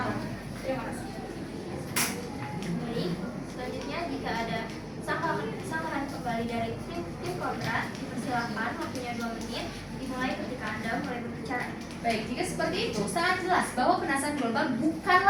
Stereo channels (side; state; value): both; identical; correlation 1.00